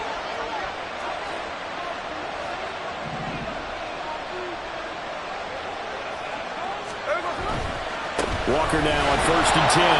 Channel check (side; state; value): both; identical; correlation 1.00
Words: Walker now on 1st and 10.